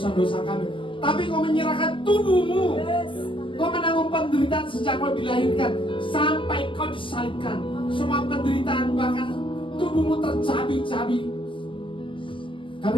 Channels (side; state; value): right; late; 0.25 ms